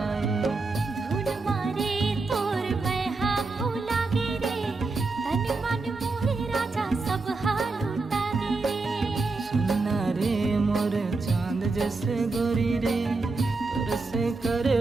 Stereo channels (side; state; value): left; quieter; 3.7 dB